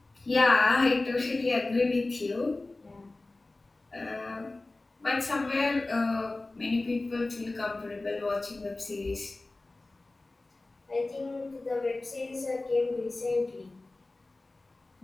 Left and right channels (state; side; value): quieter; right; 3.1 dB